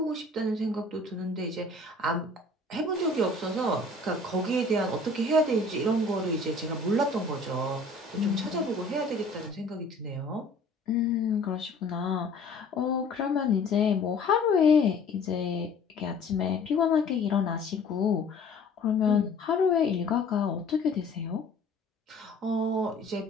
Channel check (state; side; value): quieter; right; 3.1 dB